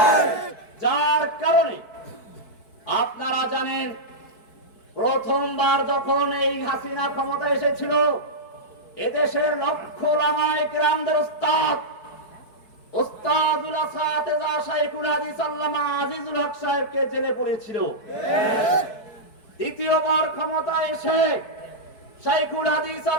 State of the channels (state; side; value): late; right; 4.6 ms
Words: যার কারণে আপনারা জানেন, প্রথমবার যখন এই হাসিনা ক্ষমতা এসেছিল, এদেশের লক্ষ ওলামায়ে কেরামদের উস্তাদুল আসাতিজা শাইখুল হাদিস আল্লামা আজিজুল হক সাহেবকে জেলে পড়েছিল। দ্বিতীয়বার ক্ষমতা এসে শাইখুল হাদিস